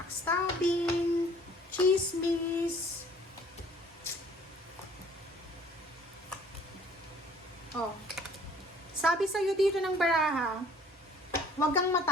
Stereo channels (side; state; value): both; normal; correlation 0.55